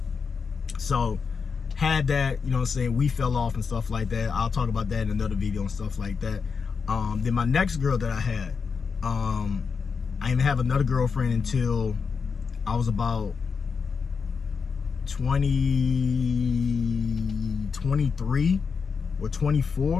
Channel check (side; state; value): right; quieter; 5.6 dB